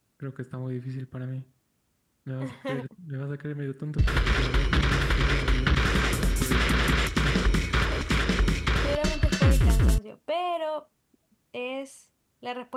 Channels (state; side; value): identical; both; correlation 1.00